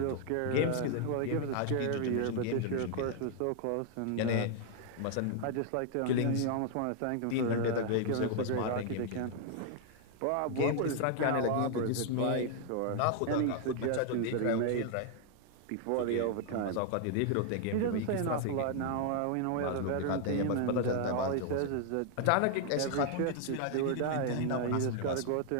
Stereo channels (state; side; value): different; both; correlation 0.00